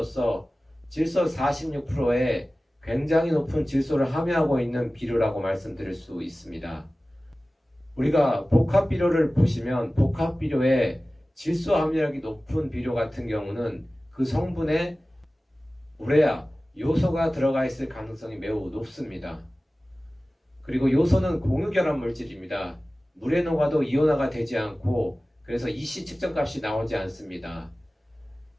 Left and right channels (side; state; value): both; normal; correlation 0.97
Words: 질소 46%의 굉장히 높은 질소를 함유하고 있는 비료라고 말씀드릴 수 있습니다. 우리가 복합 비료를 보시면 복합 비료에 질소 함유량이 높은 비료 같은 경우는 그 성분에 우레아, 요소가 들어가 있을 가능성이 매우 높습니다. 그리고 요소는 공유결합 물질입니다. 물에 녹아도 이온화가 되지 않고 그래서 EC 측정값이 나오지 않습니다.